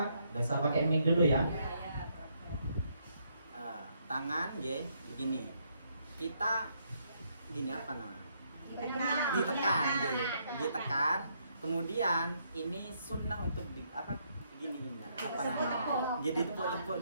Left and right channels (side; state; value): both; inverted; correlation -0.73